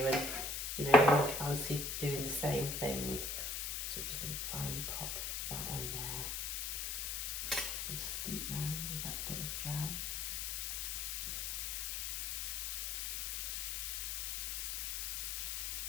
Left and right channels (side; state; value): left; noise; hiss, 1 dB below the sound